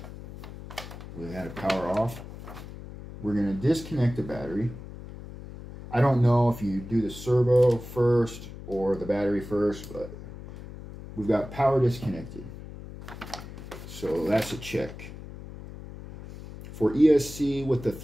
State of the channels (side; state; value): left; noise; hum, 13 dB below the sound